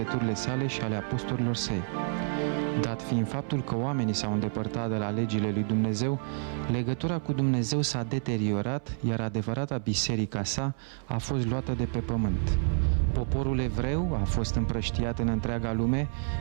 sale și ale apostolilor săi. Dat fiind faptul că oamenii s-au îndepărtat de la legile lui Dumnezeu, legătura cu Dumnezeu s-a deteriorat, iar adevărata biserica sa a fost luată de pe pământ. Poporul evreu a fost împrăștiat în întreaga lume,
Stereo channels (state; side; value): silent; left; 59 dB below the other